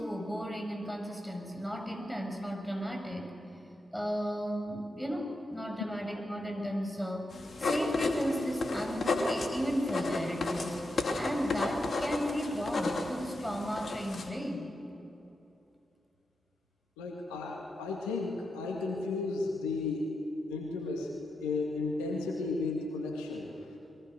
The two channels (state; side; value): normal; both; correlation 0.85